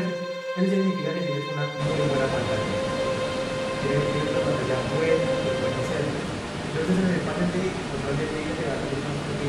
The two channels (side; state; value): both; identical; correlation 1.00